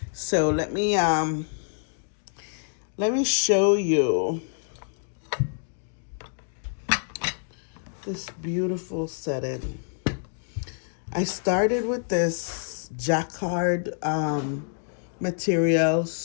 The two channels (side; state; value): right; silent; digital silence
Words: So let me show you this beautiful setting. I started with this jacquard material,